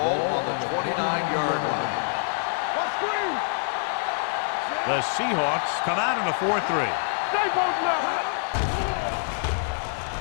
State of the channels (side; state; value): right; silent; digital silence